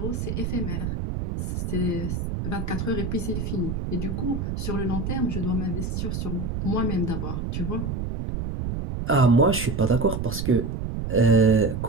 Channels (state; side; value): noise; right; rumble, 3 dB below the sound